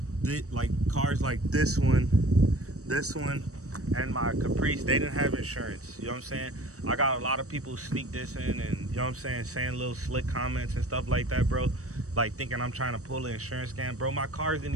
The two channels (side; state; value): left; late; 0.65 ms